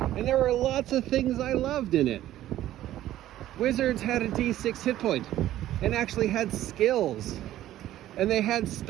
and there were lots of things I loved in it. Wizards had a D6 hit point and actually had skills, and they had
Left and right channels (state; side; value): quieter; left; 13.5 dB